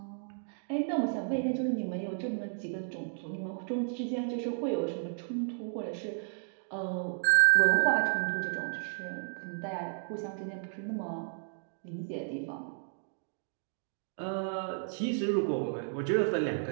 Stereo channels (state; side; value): silent; left; digital silence